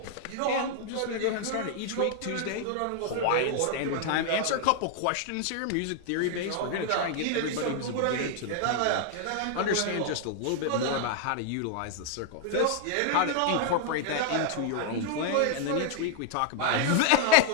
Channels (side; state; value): both; different; correlation 0.00